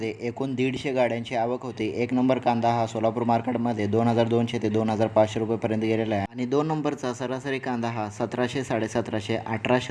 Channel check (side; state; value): both; identical; correlation 1.00